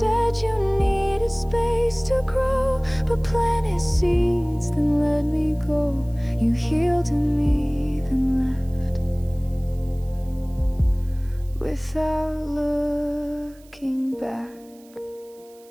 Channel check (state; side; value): noise; right; hiss, 28 dB below the sound